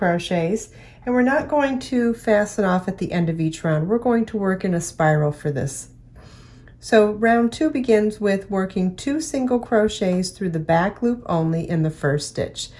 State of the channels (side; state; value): both; identical; correlation 1.00